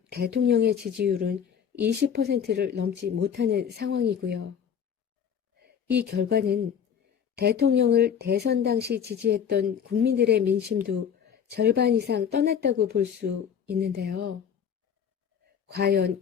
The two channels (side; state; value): right; quieter; 7.9 dB